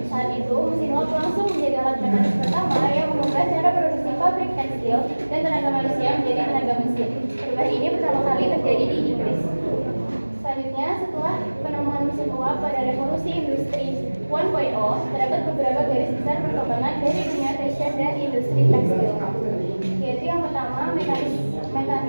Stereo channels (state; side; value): inverted; both; correlation -1.00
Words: Saat itu mesin uap langsung menjadi alat mekanis pertama yang mengubah cara produksi pabrik tekstil dan tenaga manusia menjadi tenaga mesin. Perubahan ini pertama kali terjadi di Inggris. Selanjutnya, setelah penemuan mesin uap pada revolusi industri 1.0, terdapat beberapa garis besar perkembangan dari dunia fashion dan industri tekstil, yaitu yang pertama mekanisasi